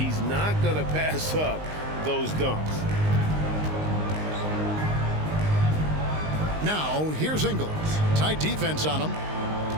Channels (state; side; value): late; left; 19 ms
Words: not going to pass up those dunks. Now, here's Ingles. Tight defense on him.